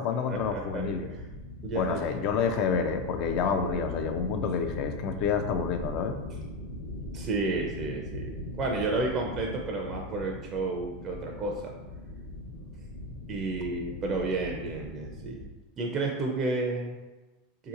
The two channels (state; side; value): normal; both; correlation 0.15